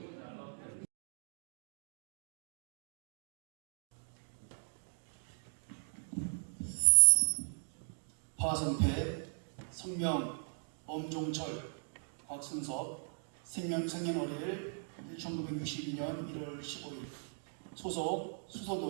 화성패, 성명, 엄종철, 곽순섭, 생년월일 1962년 1월 15일, 소속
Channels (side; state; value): left; silent; digital silence